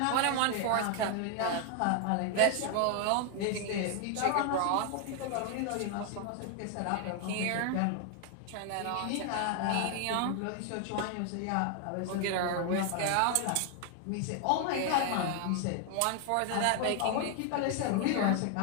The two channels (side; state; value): both; different; correlation 0.00